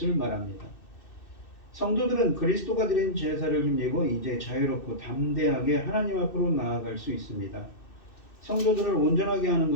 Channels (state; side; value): late; right; 2.6 ms